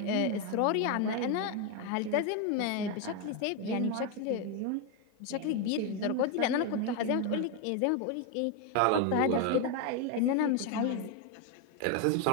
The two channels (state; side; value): different; both; correlation 0.01